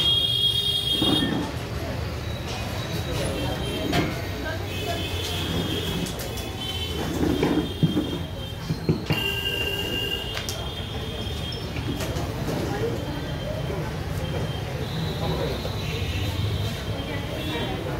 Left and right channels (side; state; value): both; identical; correlation 1.00